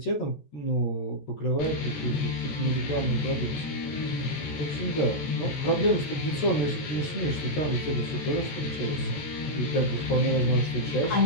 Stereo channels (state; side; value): late; right; 14 ms